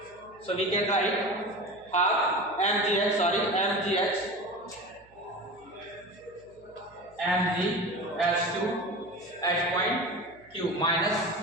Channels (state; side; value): noise; right; hum, 30 dB below the sound